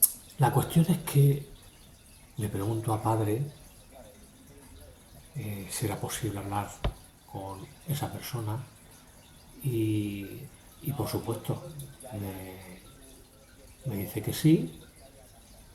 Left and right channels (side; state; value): both; identical; correlation 1.00